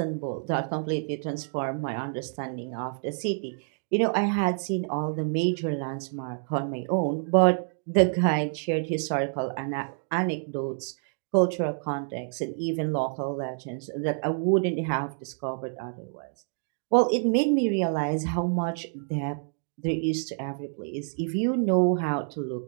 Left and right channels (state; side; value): silent; left; 60 dB below the other